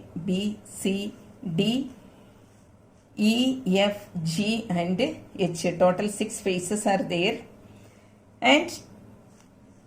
B, C, D, E, F, G and H. Total 6 faces are there. And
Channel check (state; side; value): identical; both; correlation 1.00